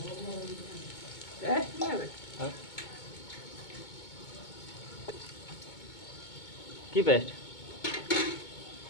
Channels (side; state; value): right; late; 2.2 ms